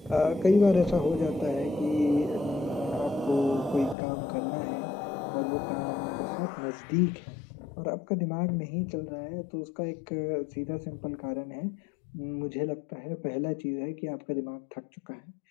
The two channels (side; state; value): right; drops out; at 4.0 s